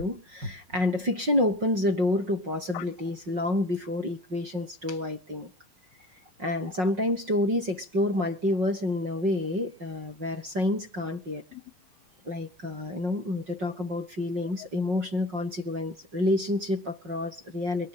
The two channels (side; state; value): left; late; 5.5 ms